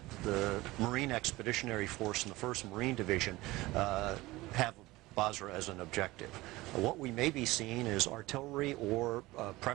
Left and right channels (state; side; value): quieter; left; 19.6 dB